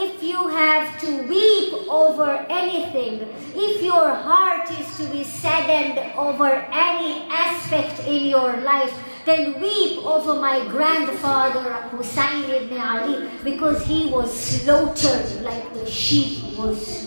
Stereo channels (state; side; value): inverted; both; correlation -1.00